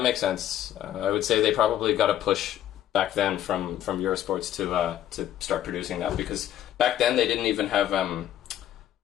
makes sense. I would say they probably got a push back then from Eurosports to start producing that, because back then they didn't even have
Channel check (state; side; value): quieter; right; 11.7 dB